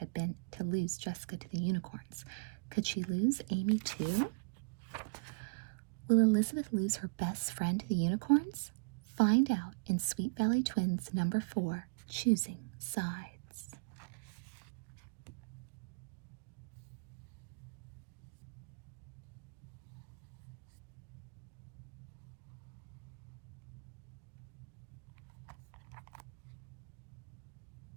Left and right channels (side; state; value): left; quieter; 32.5 dB